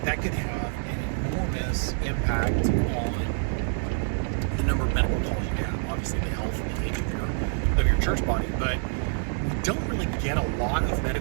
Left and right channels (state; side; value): silent; left; digital silence